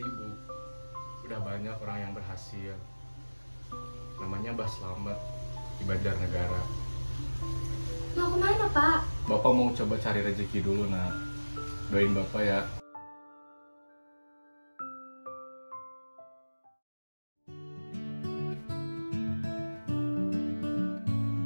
Bu. Udah banyak orang yang berhasil. Namanya Mbah Slamet di Banjarnegara. Mau kemana Pak? Bapak mau coba cari rezeki dulu nak. Doain Bapak ya.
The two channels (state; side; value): inverted; both; correlation -1.00